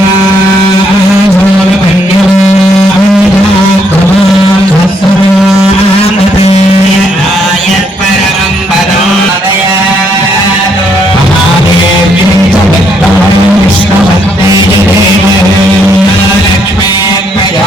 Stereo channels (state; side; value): normal; both; correlation 0.72